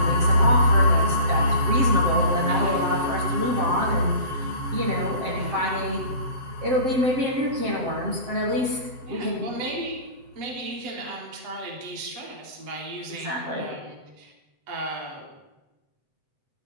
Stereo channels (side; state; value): left; late; 7.8 ms